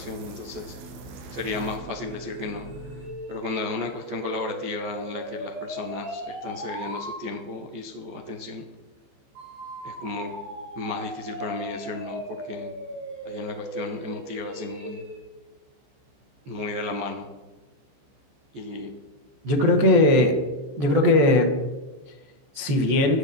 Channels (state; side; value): late; left; 15 ms